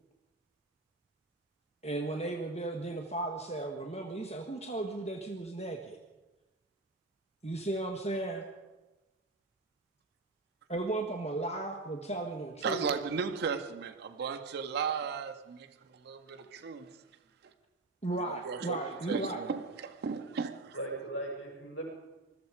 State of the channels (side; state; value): left; quieter; 3.2 dB